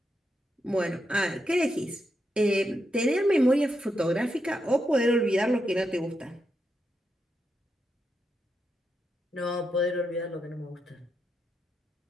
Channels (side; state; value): both; normal; correlation 0.84